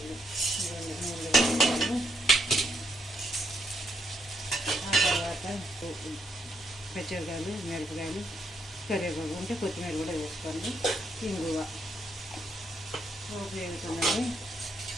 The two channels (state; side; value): normal; both; correlation 0.76